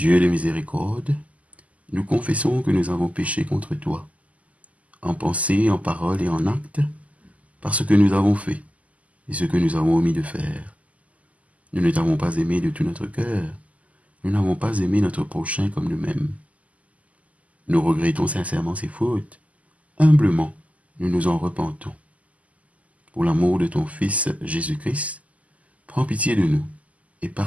de miséricorde, nous confessons que nous avons péché contre toi, en pensée, en parole et en acte, par ce que nous avons fait et ce que nous avons omis de faire. Nous ne t'avons pas aimé de tout notre cœur, nous n'avons pas aimé notre prochain comme nous-mêmes. Nous regrettons sincèrement ces fautes, humblement, nous nous en repentons. Pour l'amour de ton Fils Jésus-Christ, prends pitié de nous et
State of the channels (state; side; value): late; left; 0.071 ms